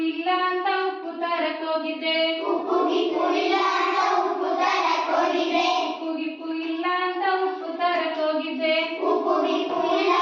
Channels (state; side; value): identical; both; correlation 1.00